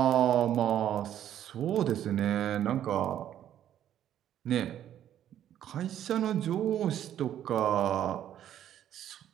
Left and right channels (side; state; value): left; quieter; 11.0 dB